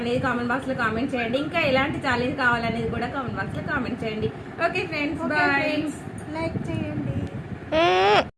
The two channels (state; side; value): identical; both; correlation 1.00